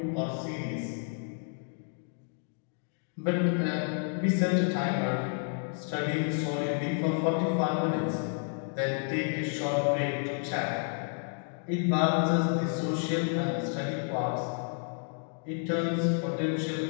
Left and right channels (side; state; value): right; silent; 56 dB below the other